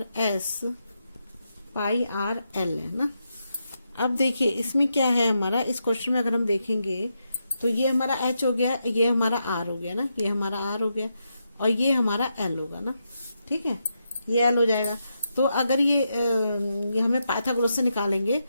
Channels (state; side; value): inverted; both; correlation -0.84